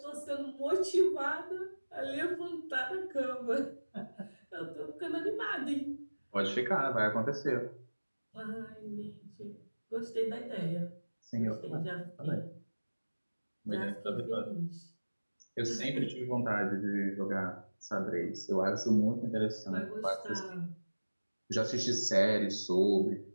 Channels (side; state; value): both; inverted; correlation -1.00